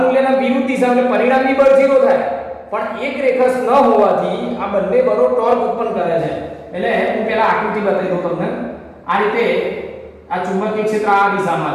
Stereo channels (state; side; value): identical; both; correlation 1.00